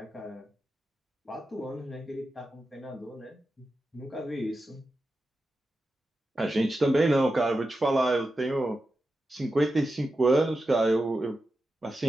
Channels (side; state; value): both; normal; correlation 0.91